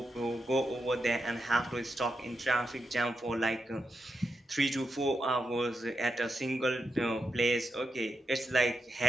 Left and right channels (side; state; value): both; normal; correlation 0.86